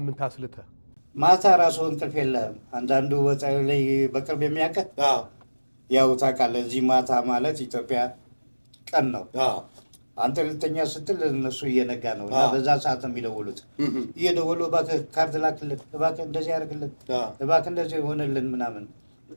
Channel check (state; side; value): inverted; both; correlation -1.00